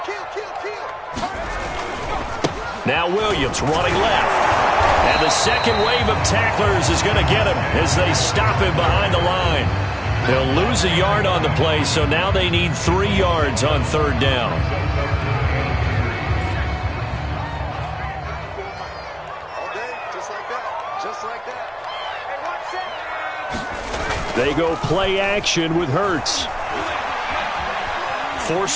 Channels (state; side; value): identical; both; correlation 1.00